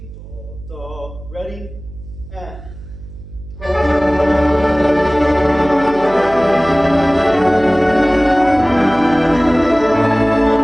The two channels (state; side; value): noise; right; hum, 16 dB below the sound